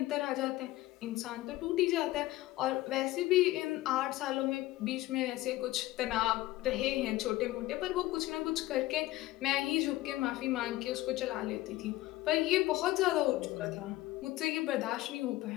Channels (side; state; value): right; quieter; 17.2 dB